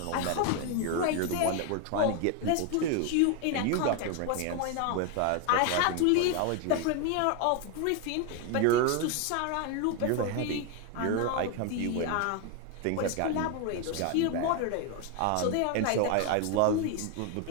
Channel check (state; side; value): different; both; correlation 0.01